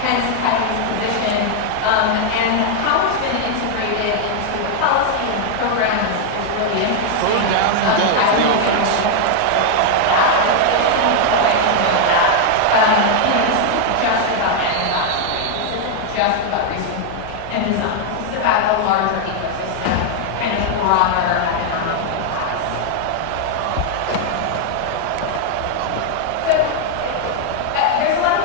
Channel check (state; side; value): different; both; correlation 0.00